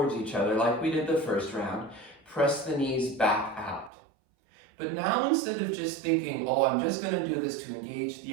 each other like we did the first round. Press the knees back out. But now instead of just thinking, oh, I'm just going to do this to engage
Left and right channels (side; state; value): left; drops out; at 3.9 s